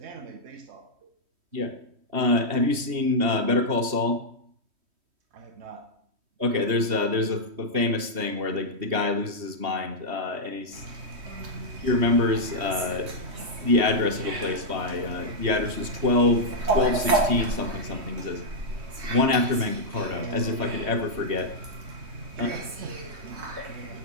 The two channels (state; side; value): late; left; 3.1 ms